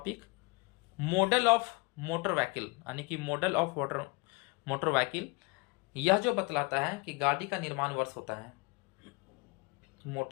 model of motor vehicle, यानी कि मॉडल ऑफ मोटर व्हीकल। यह जो बतलाता है कि गाड़ी का निर्माण वर्ष होता है,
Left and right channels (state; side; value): quieter; right; 26.9 dB